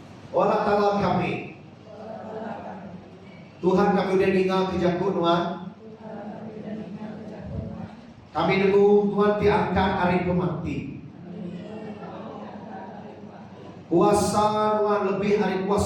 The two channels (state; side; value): identical; both; correlation 1.00